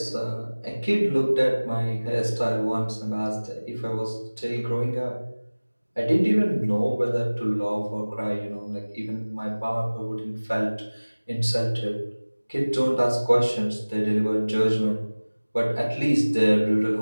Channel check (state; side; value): inverted; both; correlation -1.00